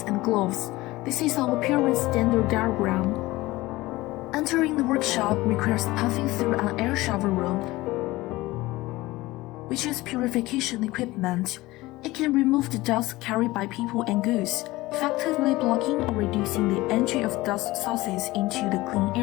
and gloves. This is our appearance standard diagram. Entering the workshop requires passing through an air shower room, which is purification equipment. It can remove the dust carried by people and goods, effectively blocking or reducing the entry of dust sources into the clean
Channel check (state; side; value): quieter; right; 19.3 dB